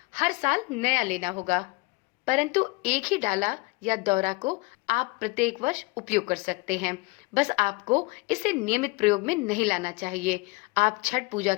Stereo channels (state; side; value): quieter; right; 25.8 dB